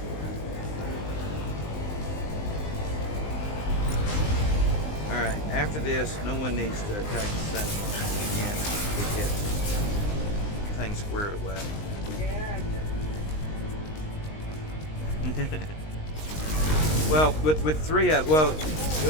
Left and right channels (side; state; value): right; late; 19 ms